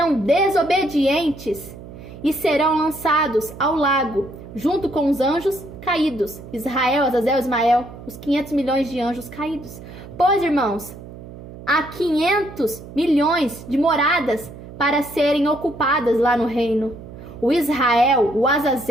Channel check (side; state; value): right; noise; hum, 15 dB below the sound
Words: desobedientes e serão lançados ao lago, junto com os anjos caídos. Israel, Azazel, Ismael, os 500 milhões de anjos caídos. Pois, irmãos, há 500 milhões de moradas para serem ocupadas lá no reino. O Israel, o